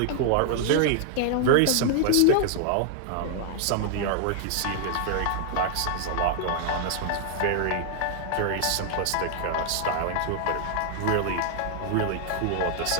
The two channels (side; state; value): both; different; correlation 0.00